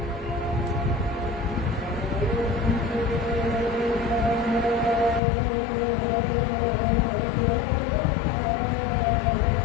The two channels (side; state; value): right; drops out; at 5.2 s